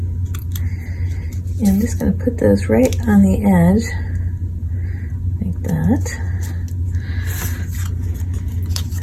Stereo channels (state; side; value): identical; both; correlation 1.00